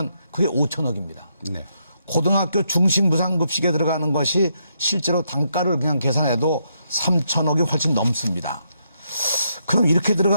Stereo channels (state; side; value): inverted; both; correlation -0.78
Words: 그게 5천억입니다. 네. 고등학교 중식 무상급식에 들어가는 것이 실제로 단가를 그냥 계산해도 3천억이 훨씬 넘습니다. 그럼 이렇게